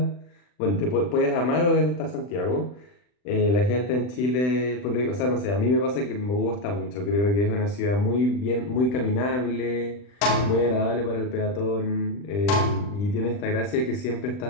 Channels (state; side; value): late; right; 40 ms